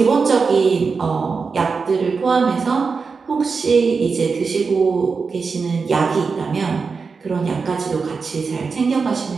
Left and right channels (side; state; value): left; quieter; 4.9 dB